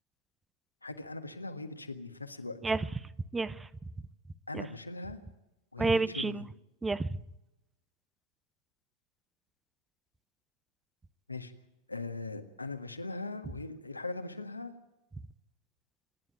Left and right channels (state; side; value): normal; both; correlation 0.50